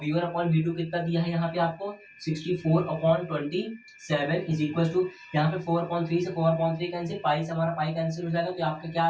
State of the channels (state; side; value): identical; both; correlation 1.00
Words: V1/V2 कितना दिया है यहाँ पे आपको 64/27 इज इक्वल टू, यहाँ पे 4/3 से 4/3 कैंसिल, पाई से हमारा पाई कैंसिल हो जाएगा, तो आपका क्या